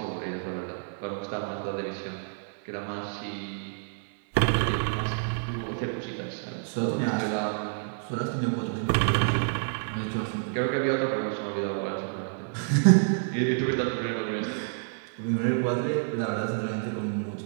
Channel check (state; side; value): silent; left; 59 dB below the other